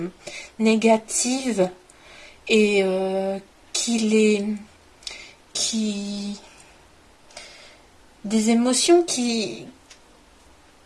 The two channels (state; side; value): identical; both; correlation 1.00